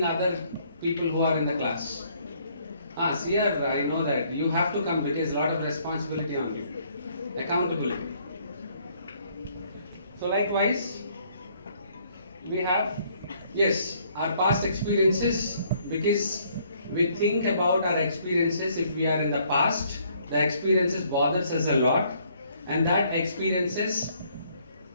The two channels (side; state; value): both; inverted; correlation -0.65